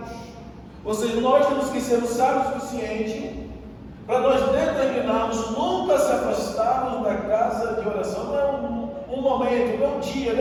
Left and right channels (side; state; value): both; identical; correlation 1.00